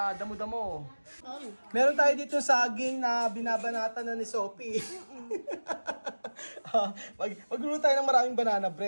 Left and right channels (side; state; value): both; inverted; correlation -1.00